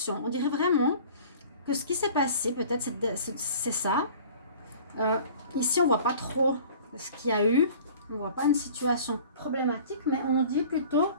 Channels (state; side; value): inverted; both; correlation -0.46